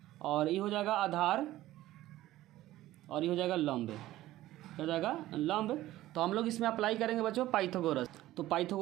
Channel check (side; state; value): left; quieter; 15.4 dB